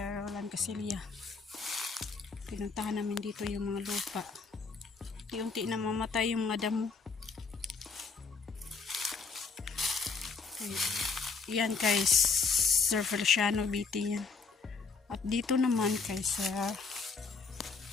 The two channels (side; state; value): right; quieter; 4.8 dB